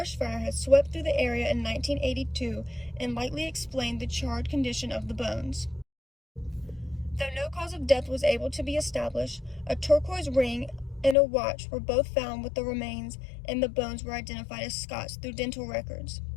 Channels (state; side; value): drops out; right; at 11.2 s